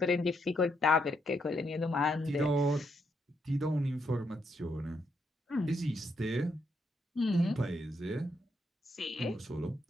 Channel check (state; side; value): normal; both; correlation 0.77